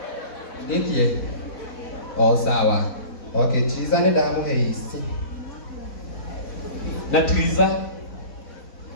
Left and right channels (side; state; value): right; late; 4.1 ms